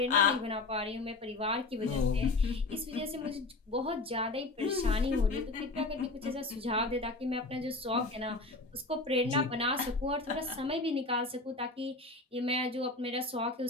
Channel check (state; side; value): quieter; right; 3.2 dB